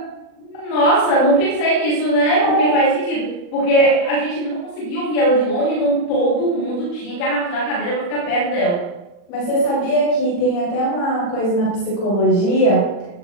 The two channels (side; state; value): right; late; 40 ms